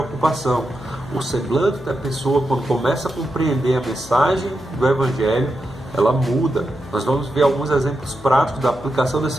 O semblante da pessoa, quando começa a compreender a mensagem do Evangelho, ela muda. Nós vamos ver alguns exemplos práticos da aplicação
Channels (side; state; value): left; noise; hum, 18 dB below the sound